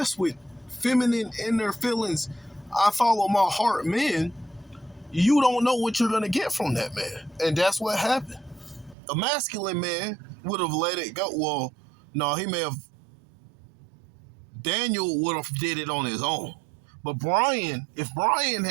with feminine inner feelings, I follow my heart men, you don't know what you're going to get from that man. And that's what happened. A masculine man would have let it go. Well, no, Daniel would have did it on his own. But if Brian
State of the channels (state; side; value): drops out; left; at 9.0 s